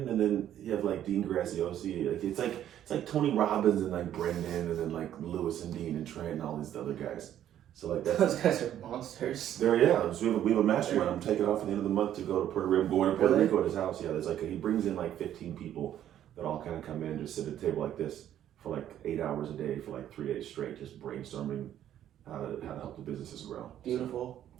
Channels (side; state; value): left; quieter; 11.1 dB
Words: and then you have like Dean Graziosi. Like it's like Tony Robbins and like Brendan, and then like Lewis and Dean and Trent and all these other guys. So like Those guys are monsters. So we have a mastermind. I'm taking off at the end of the month to go to Puerto Rico. I'm going to Puerto Rico at his house. Yeah, there's he brings in like 15 people that all kind of come in and just sit at a table like this for like 8 hours a day for like 3 days straight, just brainstorming how to help the businesses grow. Beautiful.